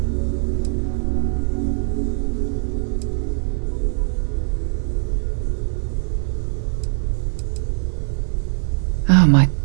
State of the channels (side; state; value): left; silent; digital silence